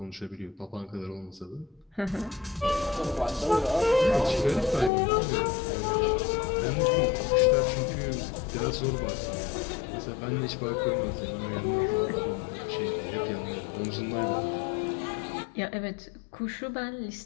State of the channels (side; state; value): right; drops out; at 4.9 s